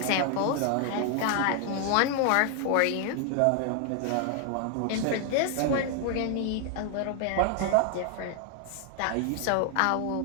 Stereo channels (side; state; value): both; different; correlation 0.00